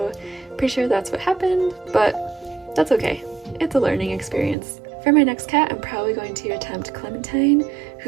pretty sure that's what happened, but that's okay. It's a learning experience. For my next cat, I'm probably going to attempt Clementine,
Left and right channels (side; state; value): left; drops out; at 4.5 s